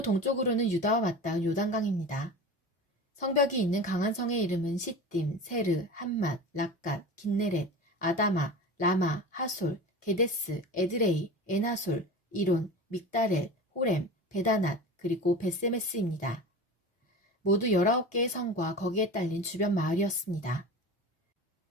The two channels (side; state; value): both; normal; correlation 0.32